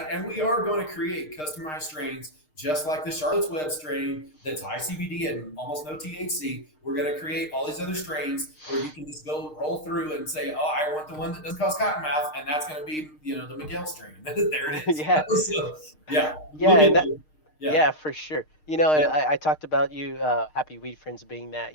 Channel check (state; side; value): late; right; 6.5 ms